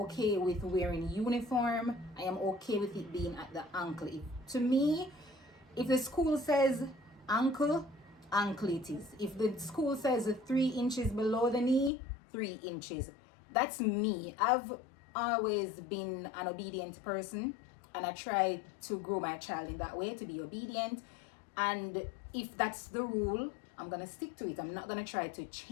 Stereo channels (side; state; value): right; drops out; at 11.9 s